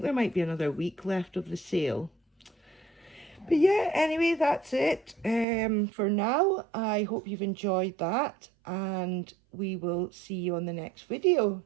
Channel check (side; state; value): left; drops out; at 5.5 s